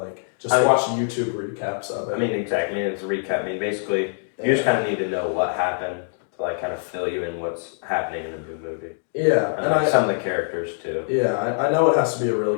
just watch YouTube recaps of it. I mean, exactly. I mean, it's a recap. I mean, basically, you just kind of need to know what happened to like kind of fill you in what's happening in the new movie. Yeah, And like, some of the characters too. Yeah, I know it has to be a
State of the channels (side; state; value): right; silent; digital silence